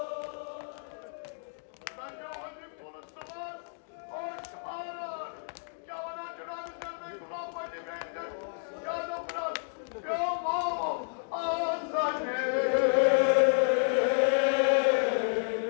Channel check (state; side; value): silent; right; digital silence